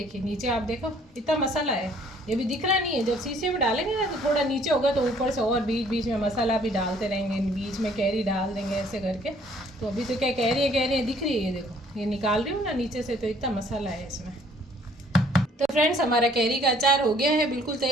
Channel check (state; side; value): normal; both; correlation 0.59